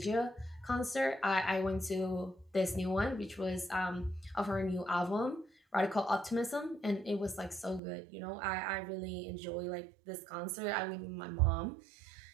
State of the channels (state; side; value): drops out; left; at 7.8 s